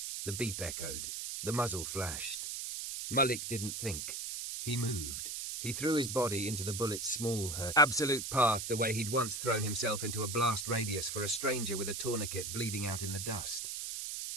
The beep echoed. The muzzle flashed. Malik didn't think. He moved. He threw his body into the bullet's small hurt, absolute path the way he'd once thrown himself into a blast radius for a stranger with a tourniquet bleeding out in the dust.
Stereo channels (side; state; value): right; noise; hiss, 5 dB below the sound